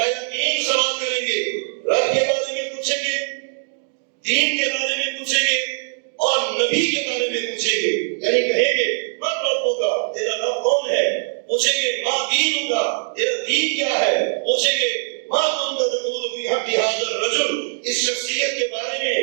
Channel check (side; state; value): left; silent; digital silence